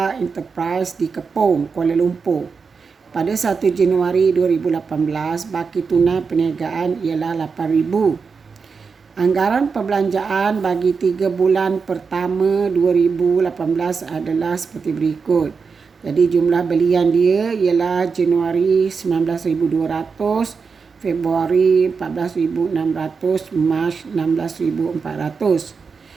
Enterprise di Kepong, Kuala Lumpur. Pada 1 Januari 2018, baki tunai perniagaan ialah 8,000. Anggaran perbelanjaan bagi 3 bulan pertama 2018 adalah seperti berikut. Jadi jumlah belian dia ialah Januari 19,200, Februari 14,600, Mac 16,400.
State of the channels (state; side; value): quieter; left; 5.3 dB